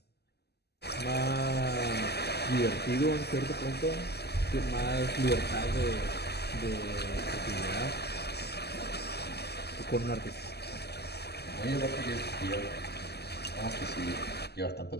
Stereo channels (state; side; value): late; right; 0.48 ms